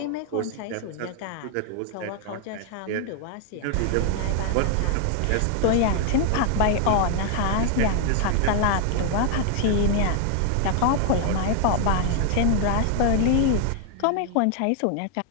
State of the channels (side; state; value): both; different; correlation 0.00